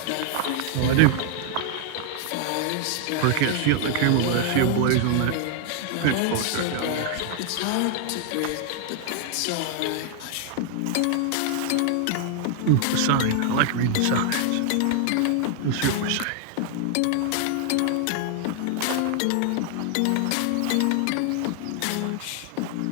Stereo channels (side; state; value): both; different; correlation 0.00